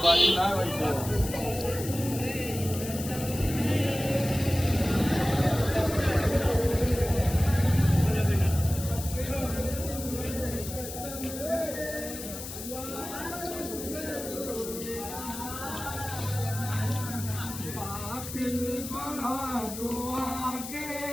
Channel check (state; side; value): noise; left; hiss, 9 dB below the sound